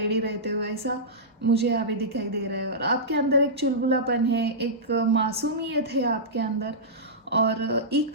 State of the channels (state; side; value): normal; both; correlation -0.15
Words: रहते हो, ऐसा मुझे यहाँ पे दिखाई दे रहा है। और आपके अंदर एक चुलबुलापन है, एक मासूमियत है आपके अंदर, और